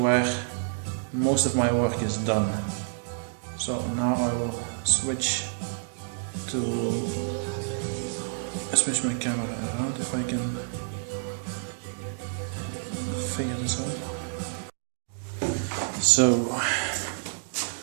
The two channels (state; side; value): silent; left; digital silence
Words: most of my work is done. So now I will switch my camera around if I can figure this out. So